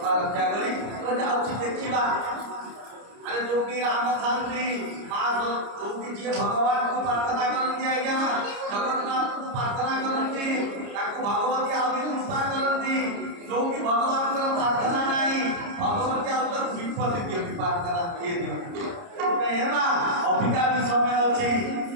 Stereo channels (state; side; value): late; left; 29 ms